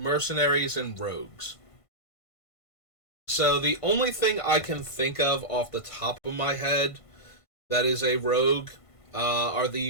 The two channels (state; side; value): late; right; 1.5 ms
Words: and rogues. So the only thing I can think of off the top of my head that is a rogue are the